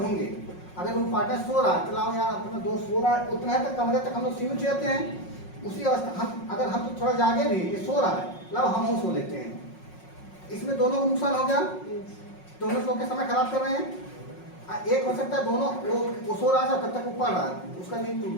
अगर रूम पार्टनर सो रहा है, चलाओ यार अपना दोस्त सो रहा है, उतना तक कमरे तक हम लोग सीमित रहते हैं। उसी अवस्था अगर हम तो थोड़ा जागे भी, ये सो रहा है, लाओ हम सो लेते हैं। इसमें दोनों को नुकसान हो गया, दोनों सो के समय खराब कर रहे हैं। एक हो सकता है दोनों, वो सो रहा था तब तक वो पढ़ रहा है, उसका नींद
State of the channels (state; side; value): late; right; 5.5 ms